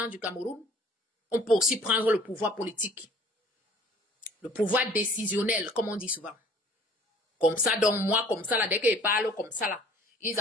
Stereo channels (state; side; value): normal; both; correlation 0.52